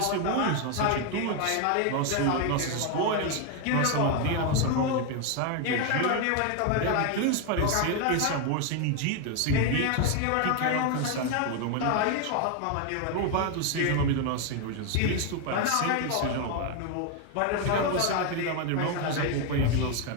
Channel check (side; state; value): both; different; correlation 0.01